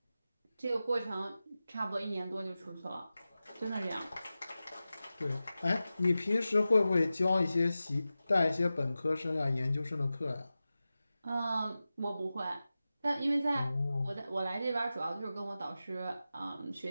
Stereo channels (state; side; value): inverted; both; correlation -0.94